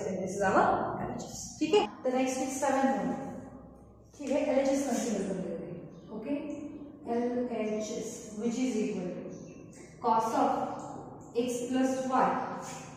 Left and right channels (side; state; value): both; identical; correlation 1.00